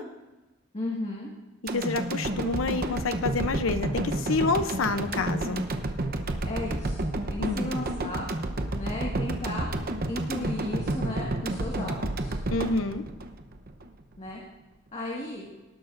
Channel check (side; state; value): both; normal; correlation 0.43